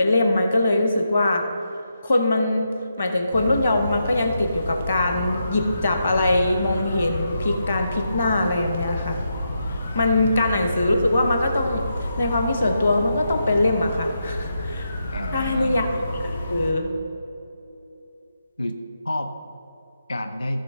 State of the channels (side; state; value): both; inverted; correlation -0.83